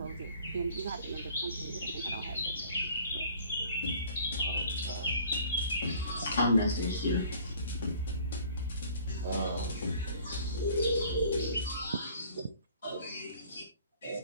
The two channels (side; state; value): both; inverted; correlation -0.52